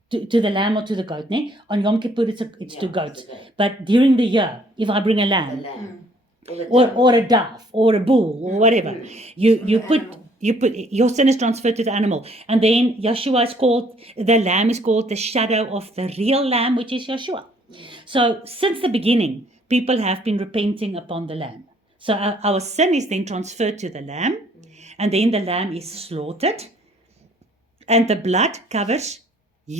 To the lamb or to the goat, ne? On Yom Kippur, it's to It's goat. the goat. But during the year, if I bring a The lamb, lamb. Or the or dove. a dove, or a bull, or whatever, you put your sin is transferred to the animal, and then Yeshua is called, the lamb is called the shadow of the real lamb, which is Yeshua. So since the beginning, people have been repenting upon the lamb. So our sin is then transferred to the lamb, and then the lamb is slaughtered, and the blood covers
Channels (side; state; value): both; normal; correlation 0.62